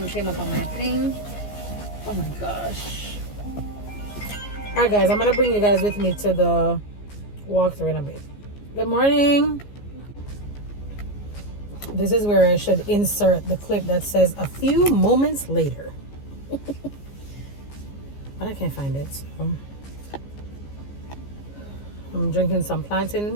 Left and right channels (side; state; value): right; late; 14 ms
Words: came up on my thing. Oh my gosh. Alright guys, I'm gonna bring you guys with me to the walkthrough in a bit. Good morning. This is where I should insert the clip that says a few moments later. But I can't find it, so I'm drinking some